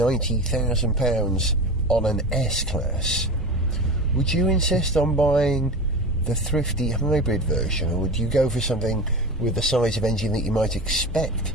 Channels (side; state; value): both; normal; correlation 0.29